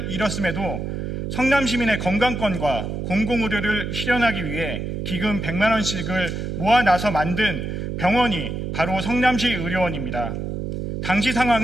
잃었음에도 성남 시민의 건강권과 공공의료를 실현하기 위해 기금 100만 원씩을 모아 나서 만든 병원이 바로 성남시 의료원입니다. 당시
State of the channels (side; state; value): right; noise; hum, 4 dB below the sound